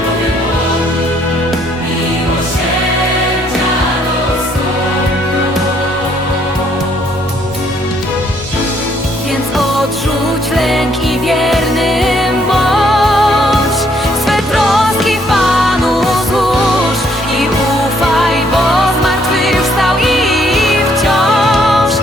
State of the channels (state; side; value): normal; both; correlation 0.67